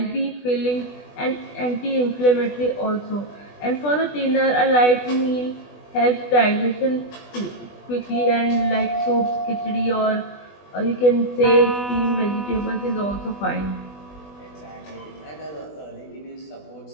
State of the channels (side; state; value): right; late; 20 ms